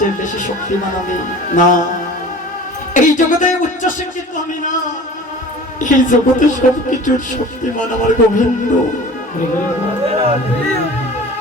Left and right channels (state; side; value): normal; both; correlation 0.42